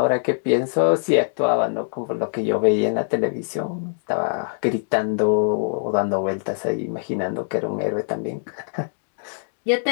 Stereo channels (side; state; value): right; silent; digital silence